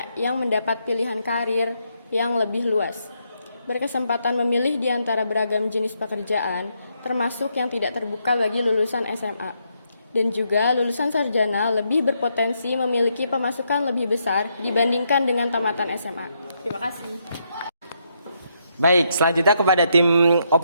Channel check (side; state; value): both; inverted; correlation -0.78